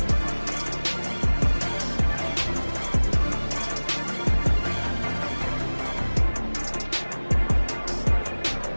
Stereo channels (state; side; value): inverted; both; correlation -1.00